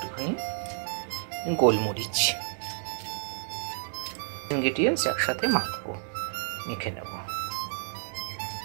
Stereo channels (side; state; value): left; silent; digital silence